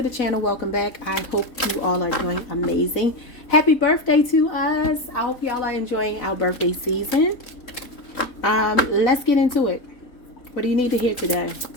channel, welcome back. I hope you all are doing amazing. Happy birthday to us. I hope y'all are enjoying our birthday season. Let's get into it. What do you need to hear today?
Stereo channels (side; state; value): right; late; 3.8 ms